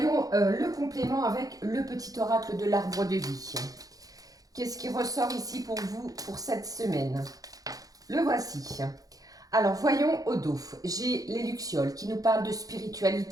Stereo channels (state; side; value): late; left; 0.17 ms